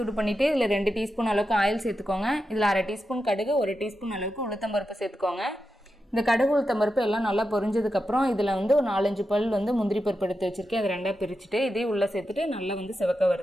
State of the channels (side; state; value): both; normal; correlation 0.89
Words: பண்ணிவிட்டு இதில் 2 டீஸ்பூன் அளவுக்கு ஆயில் சேர்த்துக்கோங்க. இதில் 1/2 டீஸ்பூன் கடுகு, 1 டீஸ்பூன் அளவுக்கு உளுத்தம்பருப்பு சேர்த்துக்கோங்க. இந்த கடுகு உளுத்தம்பருப்பு எல்லாம் நல்லா பொரிஞ்சதுக்கப்புறம் இதில் வந்து ஒரு 4-5 பல் வந்து முந்திரி பருப்பு எடுத்து வச்சுருக்கேன். அதை 2ஆக பிரிச்சுட்டு இதே உள்ளே சேர்த்துட்டு நல்லா வந்து சிவக்க